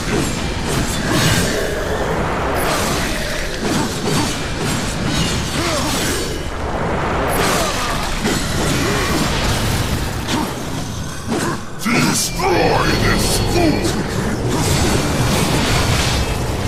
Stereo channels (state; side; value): identical; both; correlation 1.00